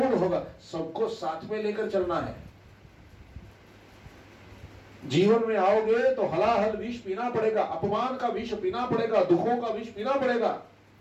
होगा, सबको साथ में लेकर चलना है। जीवन में आओगे तो हलाहल विष पीना पड़ेगा, अपमान का विष पीना पड़ेगा, दुखों का विष पीना पड़ेगा।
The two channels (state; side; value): identical; both; correlation 1.00